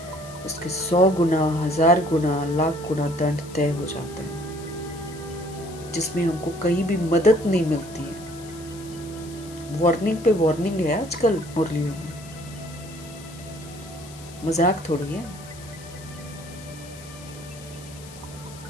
उसके 100 गुना, 1000 गुना, लाख गुना दंड तय हो जाता है, जिसमें हमको कहीं भी मदद नहीं मिलती है। वार्निंग पे वार्निंग है आजकल मुरलियों में, मजाक थोड़ी है।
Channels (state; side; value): noise; left; hiss, 19 dB below the sound